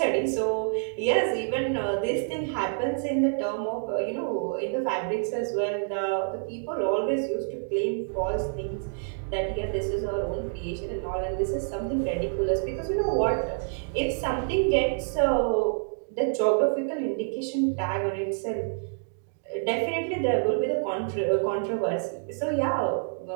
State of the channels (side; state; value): left; silent; digital silence